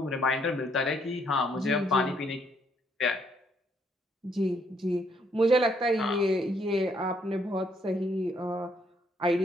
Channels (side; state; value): both; normal; correlation 0.70